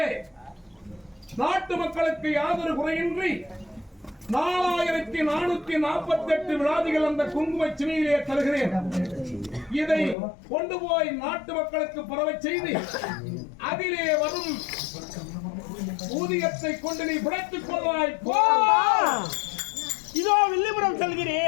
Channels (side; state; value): right; drops out; at 10.2 s